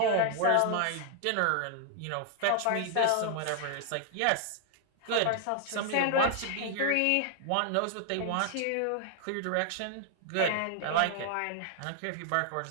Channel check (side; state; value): both; different; correlation 0.00